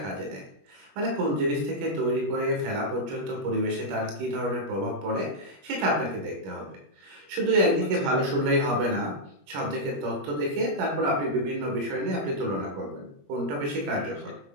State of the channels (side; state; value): left; late; 21 ms